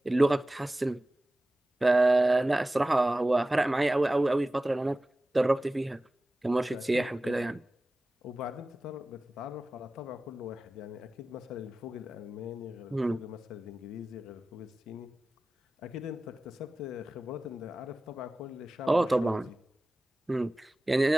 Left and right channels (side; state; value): both; normal; correlation 0.96